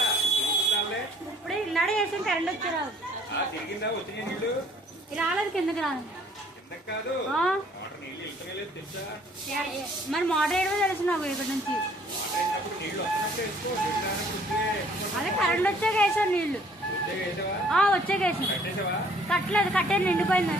ఇప్పుడు ఇల్లాడే వేసి కరెంట్ వచ్చారు రాలేదు కిందకి రాలేదు మరి మోటార్ వేయడమే తెలుసు నాకు ఇక్కడ నుంచి అదే కరెంట్ వచ్చాక వేసాను నీళ్లు వచ్చాక వేసాను కట్టలేదు కట్టేది నిండిపోయింది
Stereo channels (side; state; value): both; normal; correlation 0.58